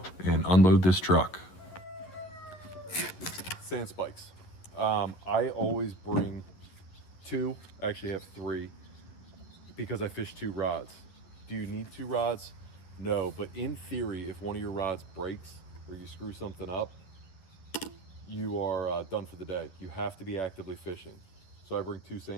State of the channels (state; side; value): late; right; 11 ms